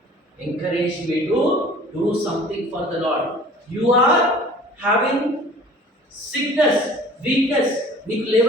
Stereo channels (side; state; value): both; normal; correlation 0.47